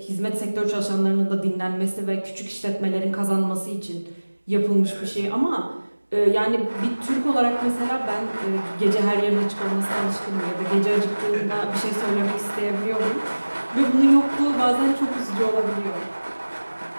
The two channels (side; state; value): both; inverted; correlation -1.00